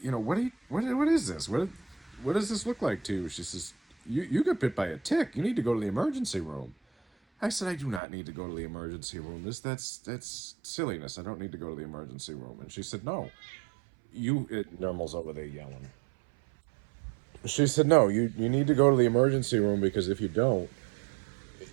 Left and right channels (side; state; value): left; drops out; at 8.0 s